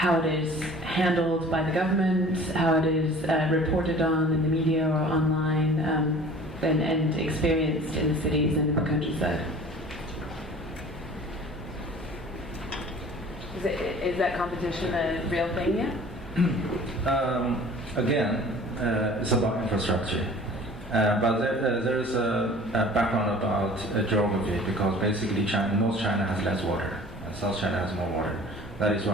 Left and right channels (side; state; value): left; noise; hum, 22 dB below the sound